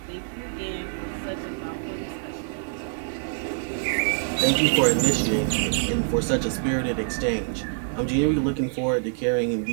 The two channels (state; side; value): silent; left; digital silence